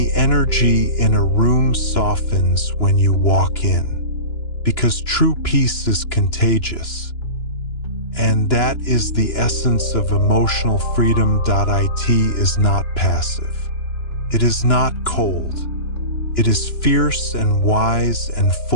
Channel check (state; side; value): late; right; 2.9 ms